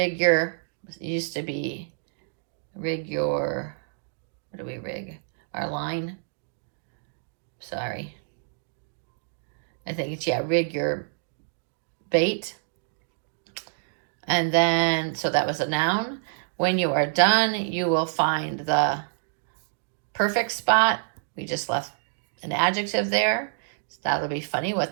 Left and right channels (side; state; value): left; silent; digital silence